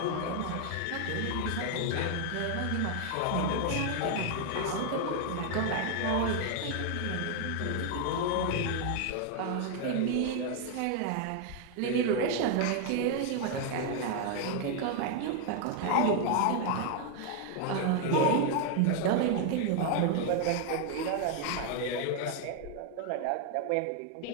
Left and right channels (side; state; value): both; different; correlation 0.00